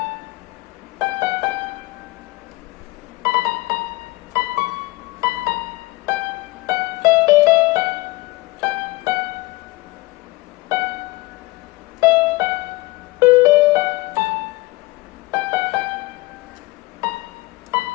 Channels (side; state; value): right; quieter; 21.4 dB